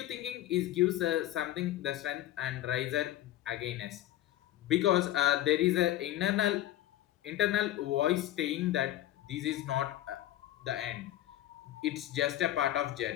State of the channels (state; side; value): quieter; right; 13.7 dB